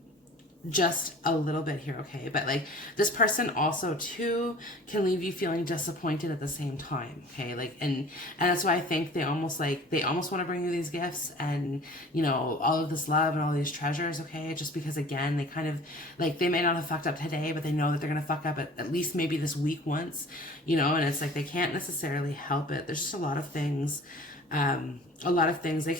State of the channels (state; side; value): normal; both; correlation 0.45